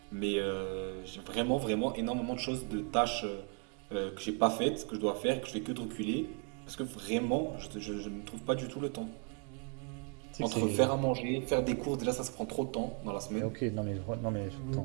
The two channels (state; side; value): quieter; left; 38.8 dB